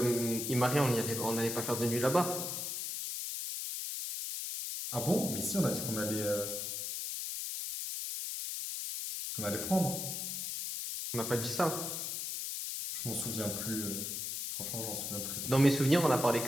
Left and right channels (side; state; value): left; noise; hiss, 4 dB below the sound